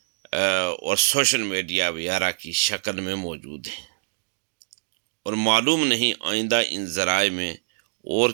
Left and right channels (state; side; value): silent; left; digital silence